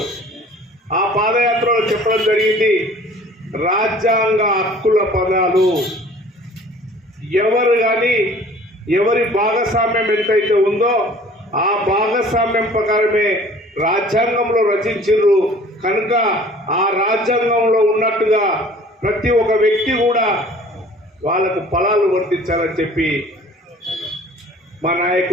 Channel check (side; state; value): both; normal; correlation 0.50